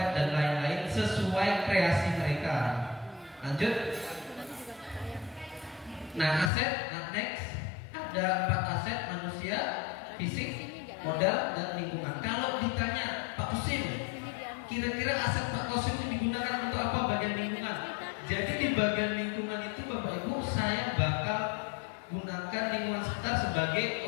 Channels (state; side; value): drops out; right; at 6.5 s